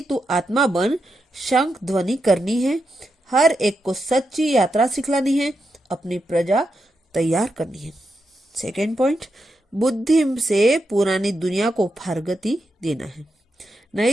तू आत्मा बन शंख ध्वनि करनी है। हर एक को सच्ची यात्रा सिखलानी है, अपनी प्रजा तैयार करनी है। सेकेंड पॉइंट, बुद्धि से पुरानी दुनिया को फारगती देना है,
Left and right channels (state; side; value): normal; both; correlation 0.85